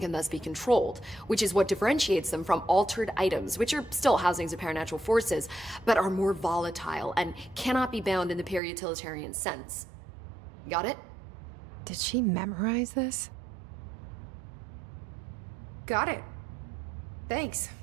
can thus be controlled, which is what differentiates them from altered items, which are still housings of paranatural forces, but are more volatile and cannot be bound in the peri-utilitarian sense. Got it? Did she memorize this? Got it. Thanks.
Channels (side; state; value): left; drops out; at 8.6 s